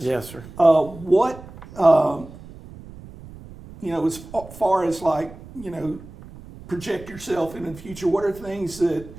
Yes, sir. What as far as project yourself into the future, what are things that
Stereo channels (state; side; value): noise; right; rumble, 17 dB below the sound